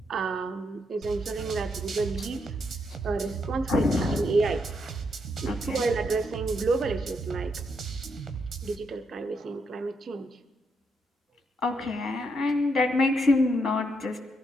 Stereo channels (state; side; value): normal; both; correlation 0.78